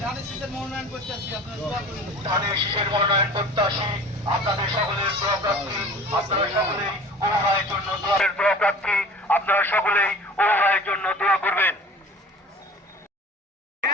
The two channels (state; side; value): normal; both; correlation 0.43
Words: ধানের শীষের মনোনয়ন প্রত্যাশী আপনাদের সকলের দোয়া প্রার্থী আপনারা সকলেই উপভাষের জন্য দোয়া প্রার্থী আপনারা সকলেই উপভাষের জন্য দোয়া করবেন।